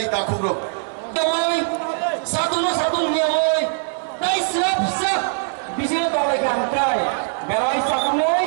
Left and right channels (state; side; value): silent; left; 60 dB below the other